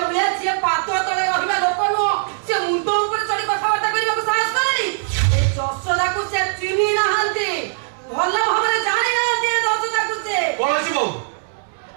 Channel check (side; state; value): left; silent; digital silence